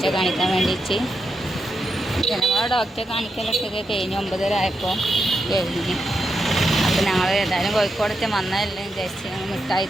കാണിക്കാൻ വേണ്ടിയിട്ട്. ജനമോളെ ഡോക്ടറെ കാണിക്കലൊക്കെ കഴിഞ്ഞ് 9:30 ആയപ്പോൾ കഴിഞ്ഞ്. അപ്പം ഞങ്ങൾ ഏതായാലും കോഴിക്കോടത്തെ വന്നതല്ലേ വിചാരിച്ച് ഞങ്ങൾ മിഠായി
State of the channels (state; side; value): normal; both; correlation 0.85